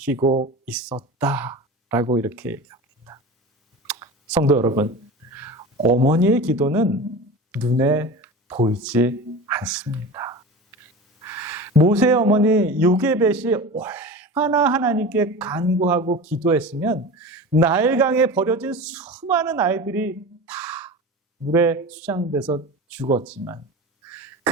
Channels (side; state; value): both; normal; correlation 0.32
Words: 있었다라고 이렇게 얘기합니다. 성도 여러분, 어머니의 기도는 눈에 보이지 않습니다. 모세의 어머니 요게벳이 얼마나 하나님께 간구하고 기도했으면 나일강에 버려진 수많은 아이들이 다 물에 수장돼서 죽었지만